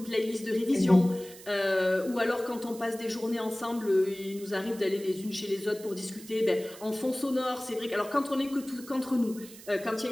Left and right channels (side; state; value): right; noise; hiss, 18 dB below the sound